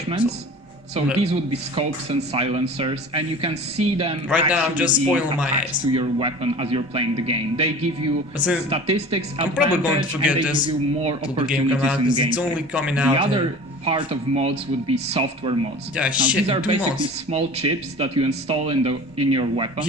So these would be scopes and silencers, and you can see them right now. I'm just spoiling my eyes to your weapon as you're playing the game. They give you statistics. I'm probably going to forget this you more till the game comes out because it's only coming out. The other part of mods would be software mods. Yeah, now, these are basically small chips that you install in your weapon,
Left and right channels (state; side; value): normal; both; correlation 0.39